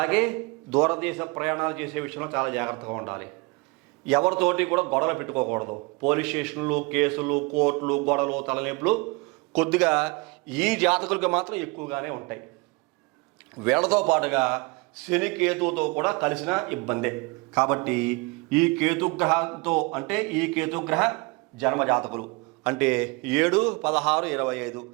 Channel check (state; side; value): quieter; left; 27.1 dB